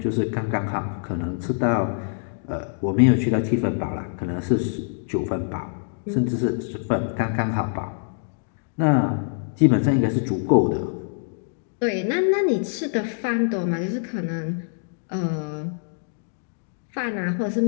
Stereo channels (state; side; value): silent; right; digital silence